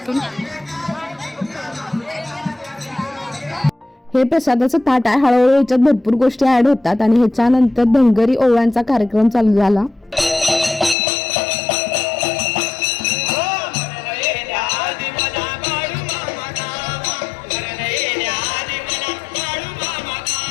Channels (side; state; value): right; drops out; at 11.0 s